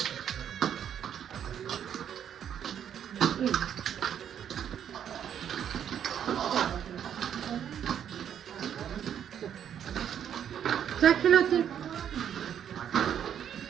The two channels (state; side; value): quieter; left; 9.2 dB